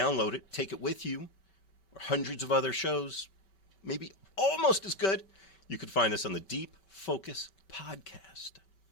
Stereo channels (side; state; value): right; late; 5.2 ms